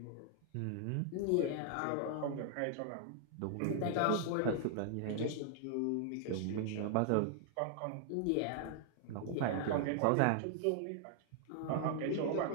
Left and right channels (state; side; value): different; both; correlation 0.00